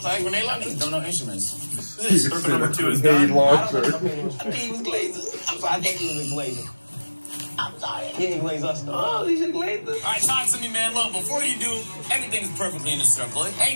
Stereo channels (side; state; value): both; inverted; correlation -1.00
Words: Like grenade launcher? Don't know instruments. Circle number 2 is Grenade done. launcher. I think he was glazing. I'm sorry, I think he was glazing. I'm sorry. He didn't glaze us though. Oh, he should glaze us. All right, talk to me, man. Look, before you do, everything's perfectly in the circle.